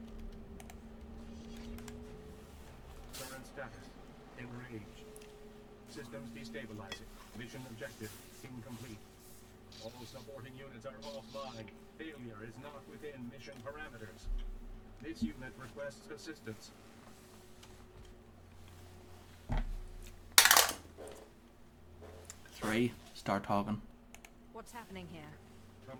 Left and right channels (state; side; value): identical; both; correlation 1.00